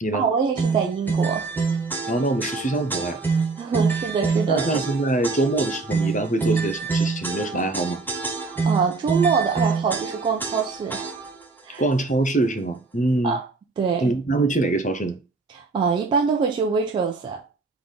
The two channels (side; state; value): left; quieter; 3.7 dB